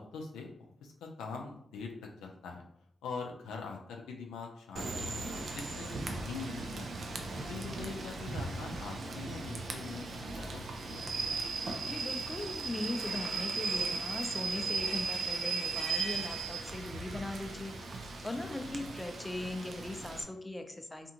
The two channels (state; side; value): normal; both; correlation 0.81